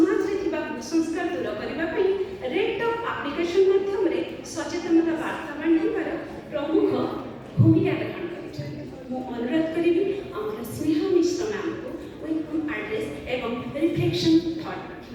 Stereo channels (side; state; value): both; identical; correlation 1.00